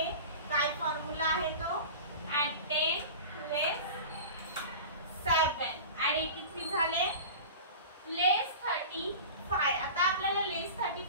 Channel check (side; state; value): both; inverted; correlation -0.34